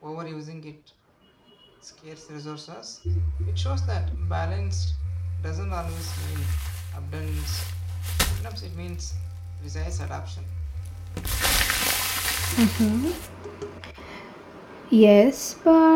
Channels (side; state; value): both; identical; correlation 1.00